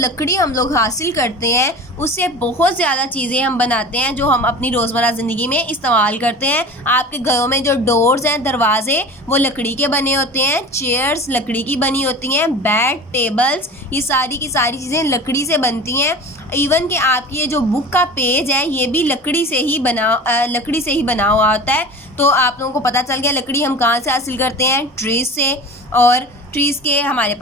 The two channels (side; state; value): both; normal; correlation 0.36